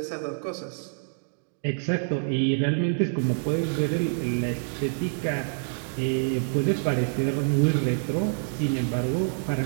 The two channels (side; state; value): left; silent; digital silence